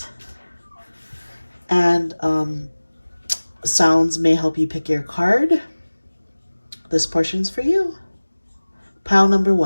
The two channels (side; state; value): both; inverted; correlation -1.00